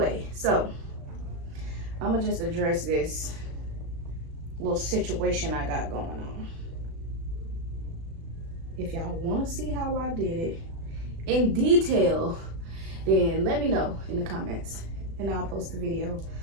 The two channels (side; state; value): left; late; 36 ms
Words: so I'm gonna just address this little situation I got going on. If y'all want to see how I did it in detail, then let me know in the comments and I'll post a video